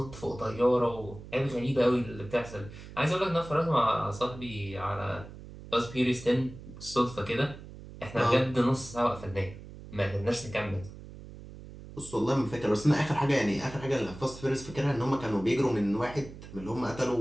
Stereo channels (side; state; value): right; noise; hum, 15 dB below the sound